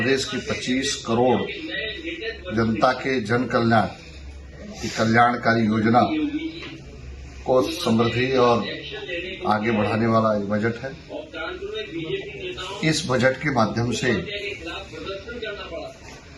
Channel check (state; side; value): identical; both; correlation 1.00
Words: की 25 करोड़ जनता के जन कल्याण की कल्याणकारी योजना को समृद्धि और आगे बढ़ाने वाला एक बजट है। इस बजट के माध्यम से